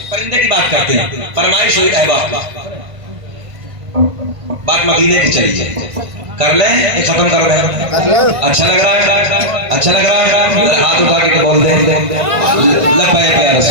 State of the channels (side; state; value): left; late; 1.5 ms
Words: परिंदे की बात करते हैं, फरमाइश हुई अहबाब बात मदीने की चली है, कर ले, ये खत्म कर दे। अच्छा लग रहा है, अच्छा लग रहा है, हाथ उठा के बोल दे लब्बैक या